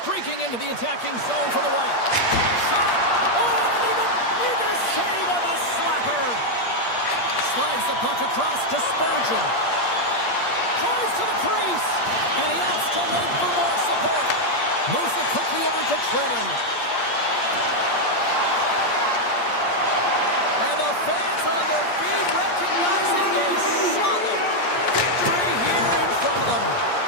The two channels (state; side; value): late; right; 8.5 ms